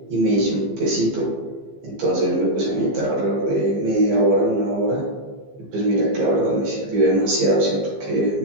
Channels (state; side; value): late; left; 15 ms